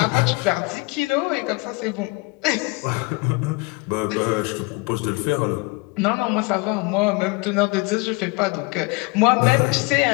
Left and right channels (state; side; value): quieter; right; 26.8 dB